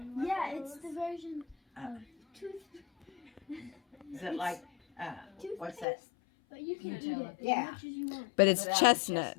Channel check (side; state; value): right; drops out; at 5.9 s